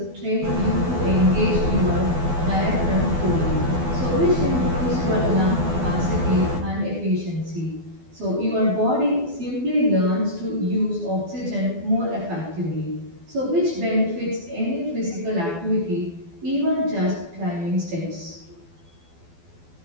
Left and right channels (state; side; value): late; left; 12 ms